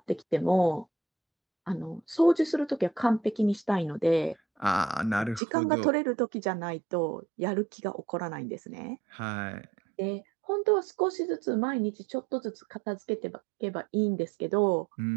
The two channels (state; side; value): drops out; left; at 5.4 s